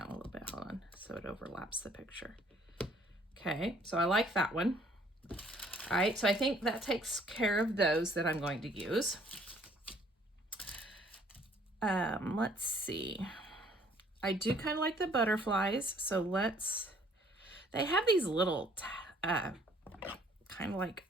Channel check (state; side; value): normal; both; correlation 0.60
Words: a little bit. Hold on, so it overlaps the picture. Okay, so I like that one. All right, so I think that takes care of those that I'm going to use. Let's see. I do kind of like the butterflies, so they have these little, kind of like